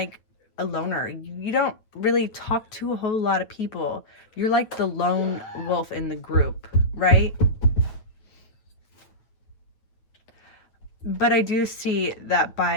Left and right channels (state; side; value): late; right; 9.0 ms